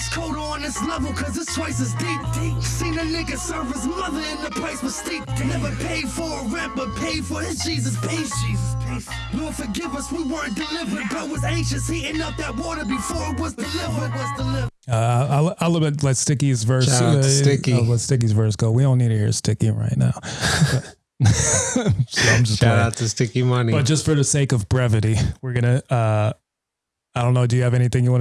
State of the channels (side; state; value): both; identical; correlation 1.00